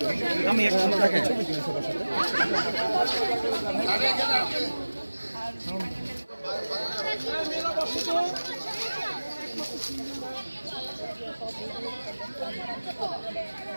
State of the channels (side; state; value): both; inverted; correlation -1.00